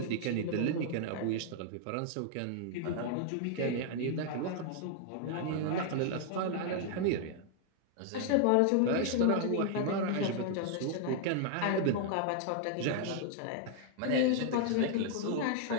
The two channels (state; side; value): different; both; correlation -0.01